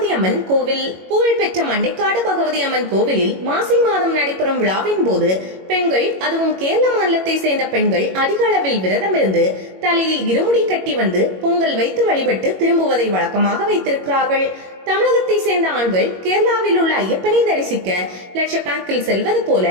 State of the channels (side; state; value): left; late; 21 ms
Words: அம்மன் கோவில். புகழ்பெற்ற மண்டைக்காடு பகவதி அம்மன் கோவிலில் மாசி மாதம் நடைபெறும் விழாவின் போது பெண்கள், அதுவும் கேரள மாநிலத்தை சேர்ந்த பெண்கள் அதிக அளவில் விரதம் இருந்து தலையில் இருமுடி கட்டி வந்து பொங்கல் வைத்து வழிபட்டு திரும்புவதை வழக்கமாக வைத்திருக்கிறார்கள். தமிழகத்தை சேர்ந்த ஆண்கள் கேரளாவில் உள்ள ஐயப்பனை தரிசிக்க லட்சக்கணக்கில் செல்வது போல